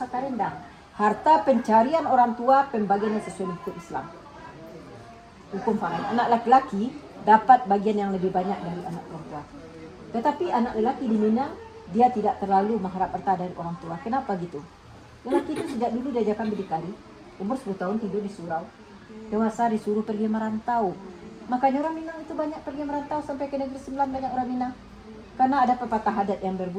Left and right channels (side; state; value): both; identical; correlation 1.00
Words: rendah. Harta pencarian orang tua pembagiannya sesuai hukum Islam. Hukum faraid. Anak laki-laki dapat bagian yang lebih banyak dari anak perempuan. Tetapi anak lelaki di Minang, dia tidak terlalu mengharap harta dari orang tua. Kenapa gitu? Lelaki itu sejak dulu diajarkan berdikari. Umur 10 tahun tidur di surau. Dewasa disuruh pergi merantau. Makanya orang Minang itu banyak pergi merantau sampai ke negeri Sembilan, banyak orang Minang. Karena ada pepatah adat yang